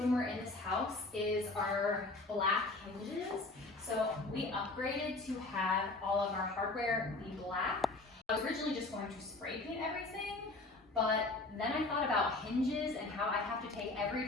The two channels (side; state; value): right; quieter; 3.1 dB